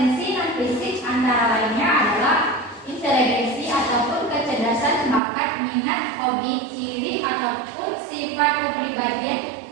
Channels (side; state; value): left; drops out; at 5.2 s